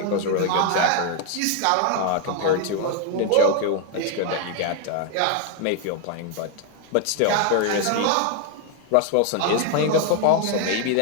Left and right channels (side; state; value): both; different; correlation 0.01